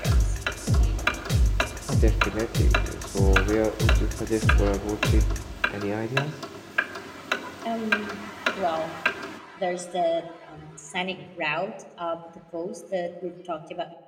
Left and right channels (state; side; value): identical; both; correlation 1.00